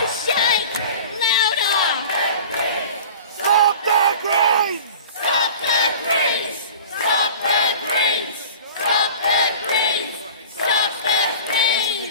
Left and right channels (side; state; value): both; inverted; correlation -0.40